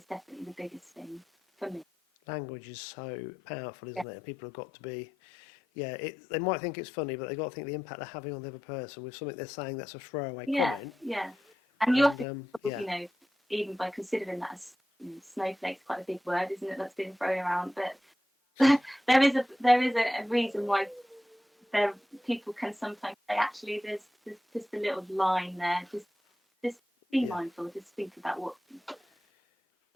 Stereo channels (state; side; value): normal; both; correlation 0.90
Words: definitely the biggest thing for me. Language is so powerful, isn't it? And people have got to be, they might think it's funny, but they've got to think the impact they're having on the other person with something they're saying that's a throwaway comment. Yeah. And you often, even by considering that as snowflake's quite a big word, isn't it? That's been thrown around, but there is a reason why people can sometimes say, actually, there's just a little line there. Just be mindful. Just think about what.